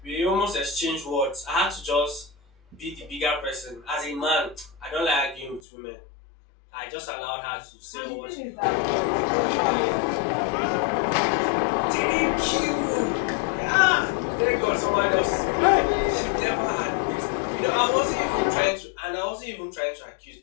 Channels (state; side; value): drops out; right; at 5.6 s